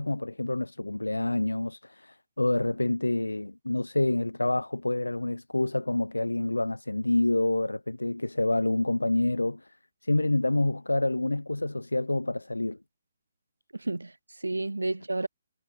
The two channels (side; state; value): both; inverted; correlation -1.00